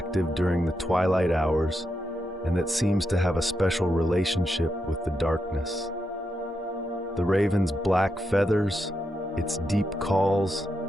during the twilight hours and that seems to have a special relationship with the darkness. The raven's black feathers, its deep calls,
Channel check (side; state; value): both; normal; correlation 0.84